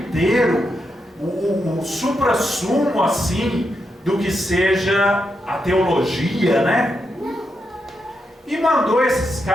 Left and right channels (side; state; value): both; normal; correlation 0.84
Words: o suprassumo assim do que seja a teologia, né? E mandou esses